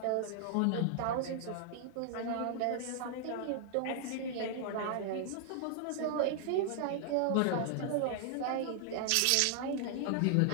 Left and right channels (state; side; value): different; both; correlation 0.00